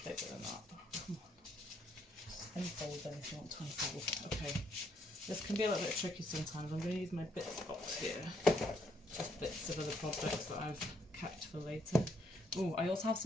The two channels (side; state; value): both; normal; correlation 0.72